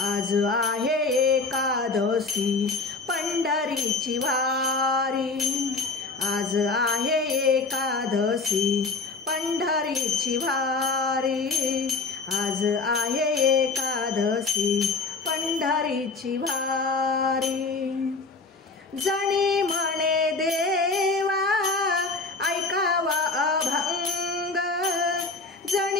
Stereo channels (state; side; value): quieter; right; 3.9 dB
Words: आज आहे एकादशी पंढरीची वारी, आज आहे एकादशी पंढरीची वारी, आज आहे एकादशी पंढरीची वारी, जणी म्हणे देवा ऐकावा अभंग,